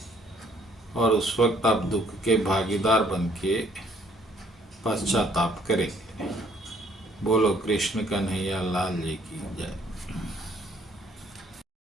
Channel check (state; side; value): normal; both; correlation 0.63